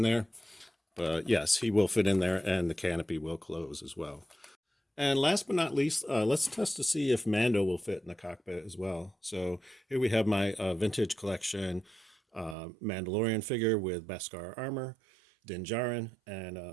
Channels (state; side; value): drops out; left; at 12.6 s